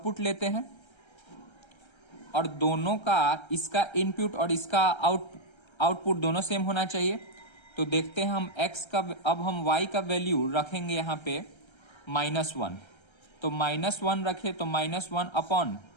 लेते हैं और दोनों का, इसका इनपुट और इसका आउटपुट दोनों सेम होना चाहिए। तो देखते हैं हम x का, अब हम y का वैल्यू रखेंगे यहाँ पे -1। तो -1 रखे तो -1 upon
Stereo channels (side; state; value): right; late; 1.3 ms